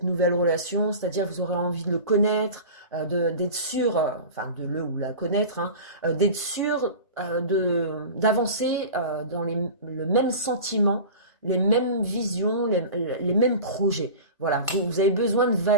nouvelle relation, c'est-à-dire vous aurez envie de le connaître, d'être sûr, enfin de le ou la connaître, hein, d'être sûr d'avancer dans le même sentiment, les mêmes visions, les mêmes projets. Voilà, vous avez besoin de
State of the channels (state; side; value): inverted; both; correlation -0.34